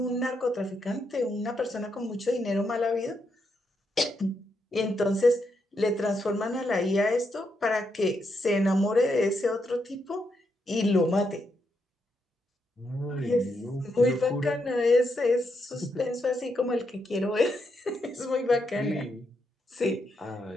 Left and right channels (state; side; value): normal; both; correlation 0.80